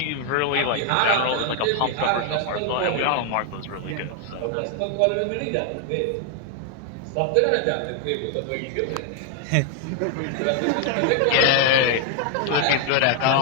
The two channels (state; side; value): different; both; correlation 0.00